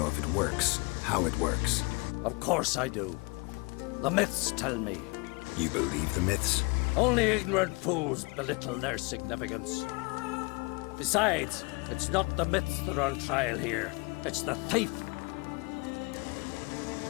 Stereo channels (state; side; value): quieter; right; 28.5 dB